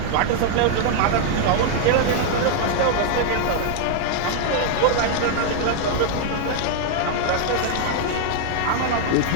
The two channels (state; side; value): different; both; correlation 0.00